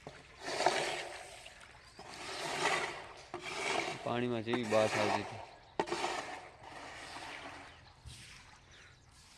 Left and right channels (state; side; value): identical; both; correlation 1.00